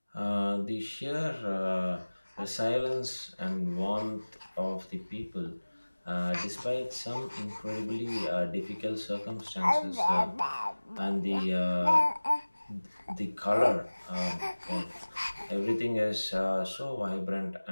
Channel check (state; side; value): inverted; both; correlation -1.00